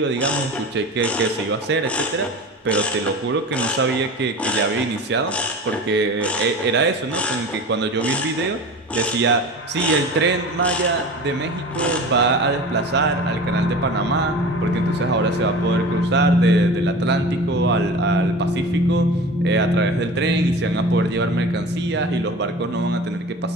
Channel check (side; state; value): both; normal; correlation 0.35